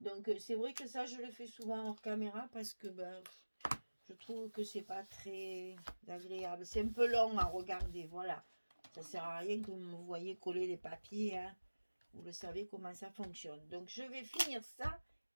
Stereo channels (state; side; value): inverted; both; correlation -1.00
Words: Donc c'est vrai que ça je le fais souvent hors caméra parce que ben je trouve que c'est pas très agréable. C'est un peu long à regarder, voilà. Ça sert à rien que vous me voyez coller les papiers. Hein. Vous le savez comment ça fonctionne. Donc je vais finir ça